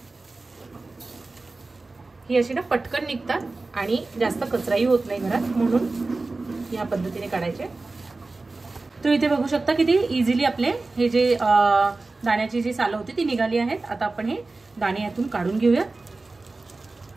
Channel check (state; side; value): quieter; left; 3.4 dB